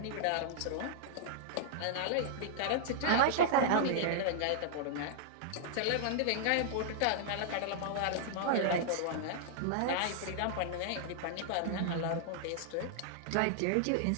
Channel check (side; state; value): both; different; correlation -0.01